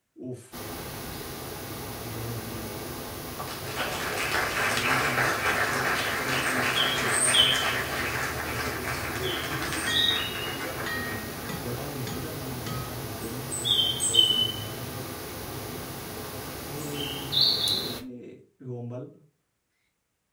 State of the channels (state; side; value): identical; both; correlation 1.00